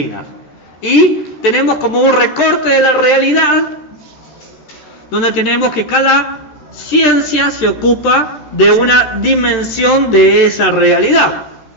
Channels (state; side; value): late; right; 13 ms